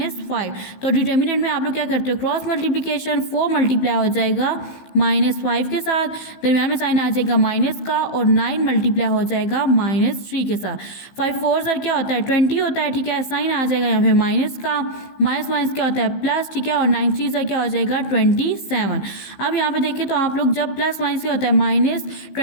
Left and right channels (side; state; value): right; late; 15 ms